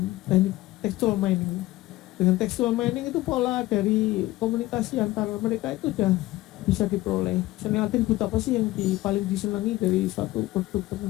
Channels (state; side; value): quieter; right; 17.6 dB